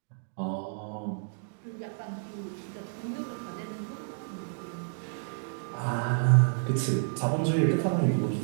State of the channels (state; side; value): silent; left; digital silence